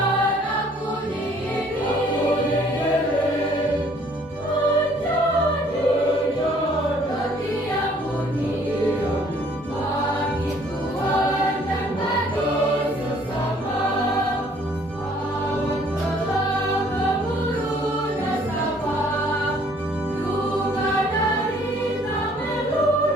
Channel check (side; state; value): both; normal; correlation 0.59